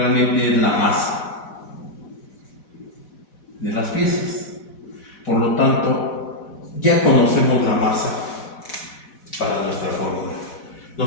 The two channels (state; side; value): late; right; 4.1 ms